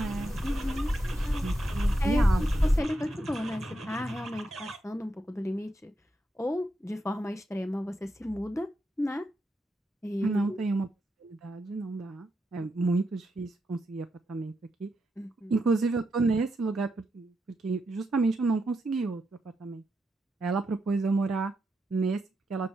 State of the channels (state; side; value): normal; both; correlation 0.84